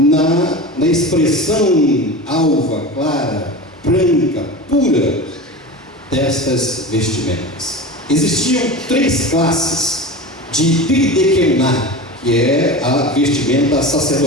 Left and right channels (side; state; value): both; normal; correlation 0.30